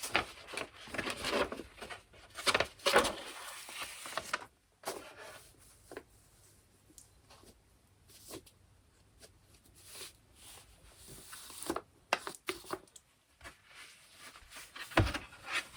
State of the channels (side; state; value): both; identical; correlation 1.00